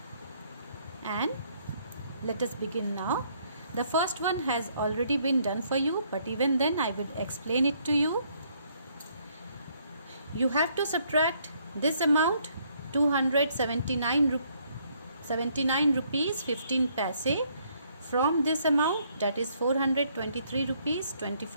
And let us begin now. The first one has already been done for you, but even then I will explain it to you. You have to subtract this amount, 279 rupees 15 paise, from this amount, that is 423 rupees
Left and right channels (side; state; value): both; inverted; correlation -0.68